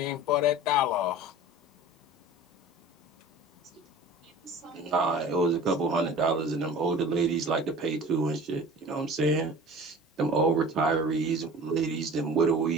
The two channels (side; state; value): both; normal; correlation 0.41